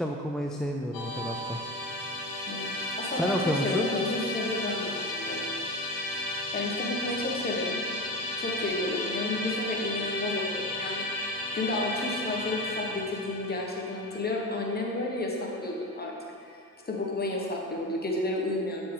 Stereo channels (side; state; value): both; normal; correlation 0.26